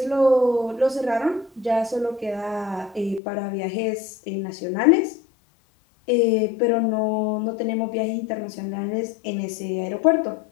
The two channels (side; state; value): right; drops out; at 3.2 s